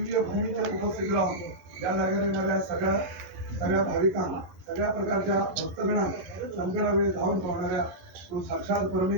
भूमीच्या उपस्थित राहून या जागेला येणाऱ्या सगळ्या भाविकांना सगळ्या प्रकारच्या भक्तगणांना संकटावेळी धावून पाहणाऱ्या तू साक्षात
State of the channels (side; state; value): left; late; 11 ms